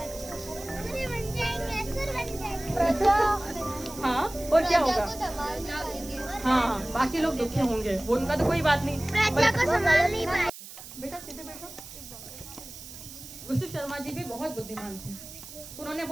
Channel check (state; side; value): noise; right; hiss, 14 dB below the sound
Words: हाँ, और क्या होगा? हाँ, बाकी लोग दुखी होंगे, वो उनका तो कोई बात नहीं। बेटा सीधे बैठो। विष्णु शर्मा जी भी बहुत बुद्धिमान थे। उन्होंने